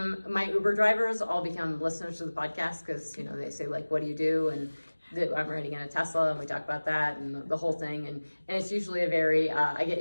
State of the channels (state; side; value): inverted; both; correlation -1.00